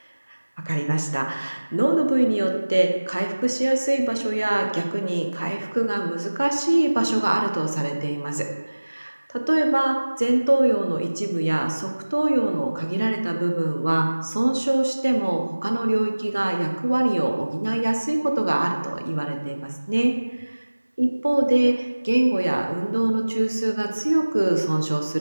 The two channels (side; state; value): both; inverted; correlation -1.00